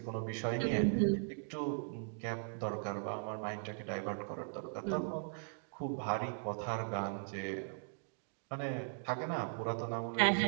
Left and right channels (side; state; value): left; silent; digital silence